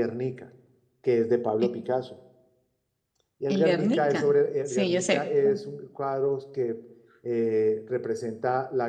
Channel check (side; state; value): both; identical; correlation 1.00